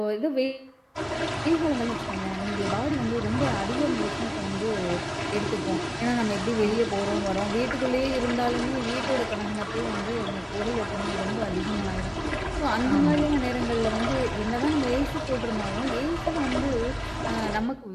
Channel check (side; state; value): both; identical; correlation 1.00